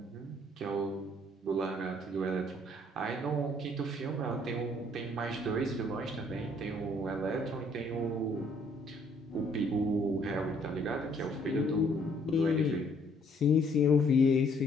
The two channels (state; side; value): normal; both; correlation 0.64